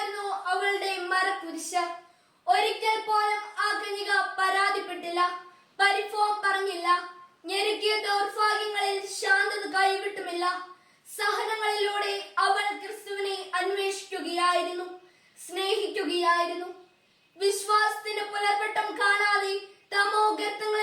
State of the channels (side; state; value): both; identical; correlation 1.00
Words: അവളുടെ മരക്കുരിശ്. ഒരിക്കൽ പോലും ആ കന്യക പരാതിപ്പെട്ടില്ല, പരിഭവം പറഞ്ഞില്ല. ഞെരുക്കിയ ദൗർഭാഗ്യങ്ങളിൽ ശാന്തത കൈവിട്ടുമില്ല. സഹനങ്ങളിലൂടെ അവൾ ക്രിസ്തുവിനെ അന്വേഷിക്കുകയായിരുന്നു, സ്നേഹിക്കുകയായിരുന്നു. വിശ്വാസത്തിന്റെ പുലർവട്ടം കാണാതെ തമോ